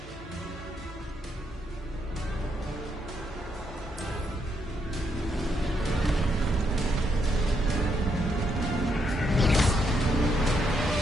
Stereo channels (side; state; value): both; normal; correlation 0.77